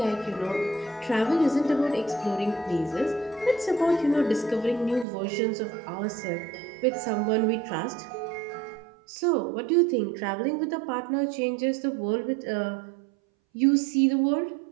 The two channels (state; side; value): drops out; left; at 5.1 s